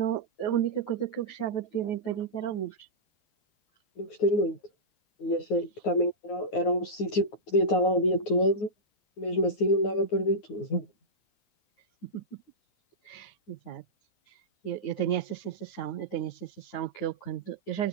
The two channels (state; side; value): late; right; 9.5 ms